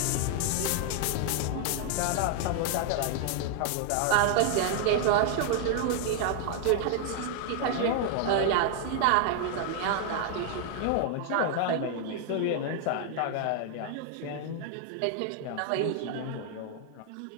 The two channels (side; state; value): both; different; correlation 0.00